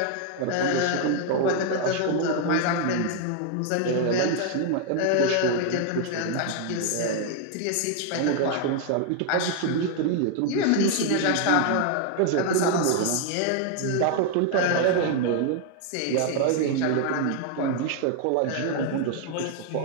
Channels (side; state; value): both; different; correlation 0.00